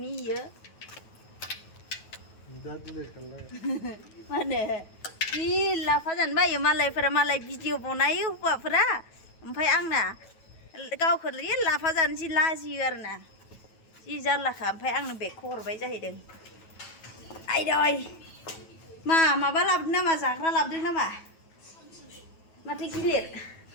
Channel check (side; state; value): right; late; 9.2 ms